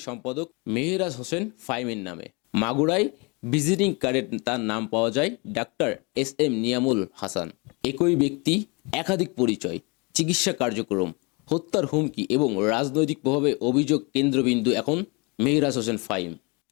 সম্পাদক মেহরাজ হোসেন ফাহিমের নামে। মাগুরায় ভিজিটিং কার্ডে তার নাম পাওয়া যায় ডাক্তার এস.এম. নিয়ামুল হাসান। একই ব্যক্তি, একাধিক পরিচয়, চিকিৎসা কার্যক্রম, হত্যার হুমকি এবং রাজনৈতিক প্রভাবে অভিযোগ কেন্দ্রবিন্দু এখন মেহরাজ হোসেন ফাহিম।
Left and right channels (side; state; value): right; quieter; 29.5 dB